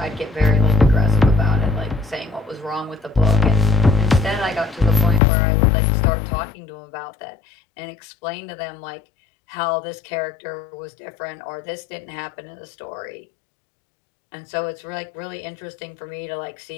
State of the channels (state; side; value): drops out; right; at 5.2 s